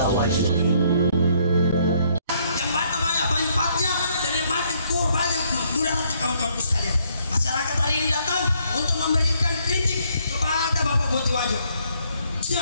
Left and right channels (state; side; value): inverted; both; correlation -0.68